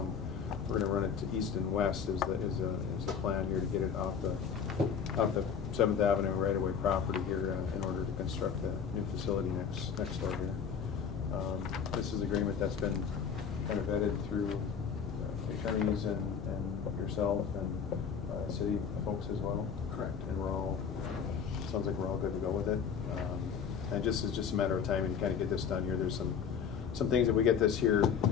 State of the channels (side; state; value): right; quieter; 6.9 dB